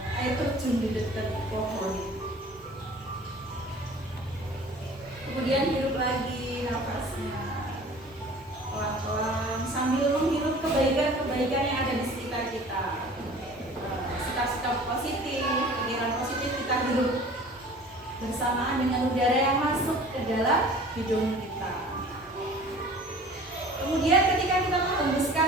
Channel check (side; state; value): both; normal; correlation 0.45